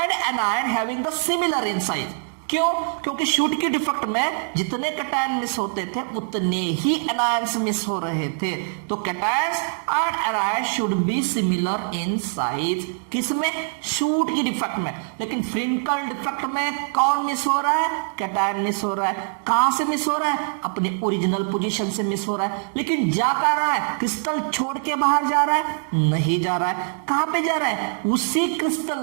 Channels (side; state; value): left; silent; digital silence